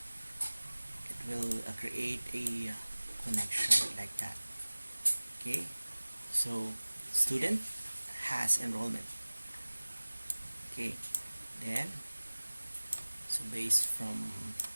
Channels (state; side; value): inverted; both; correlation -1.00